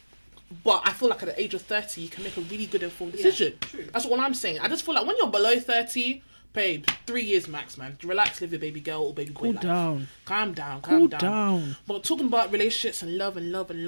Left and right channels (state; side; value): inverted; both; correlation -1.00